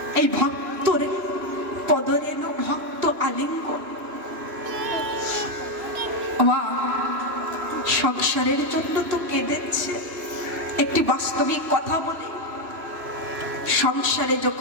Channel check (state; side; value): late; left; 2.9 ms